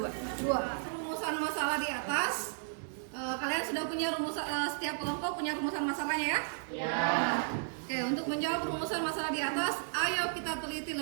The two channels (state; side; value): silent; left; digital silence